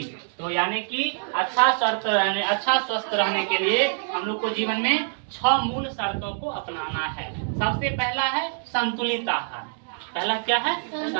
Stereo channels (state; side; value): silent; left; 61 dB below the other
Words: तो यानी कि अच्छा स्वस्थ रहने के लिए हम लोग को जीवन में 6 मूल शर्तों को अपनाना है। सबसे पहला है संतुलित आहार। पहला क्या है,